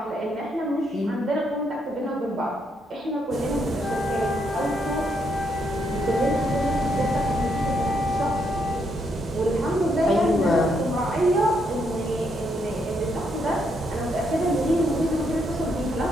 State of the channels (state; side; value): normal; both; correlation 0.76